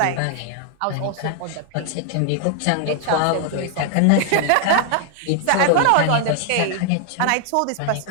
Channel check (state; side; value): different; both; correlation 0.00